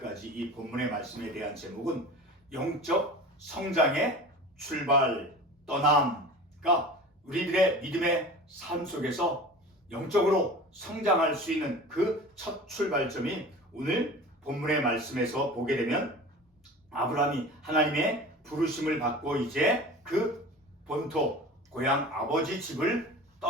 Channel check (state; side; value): normal; both; correlation 0.37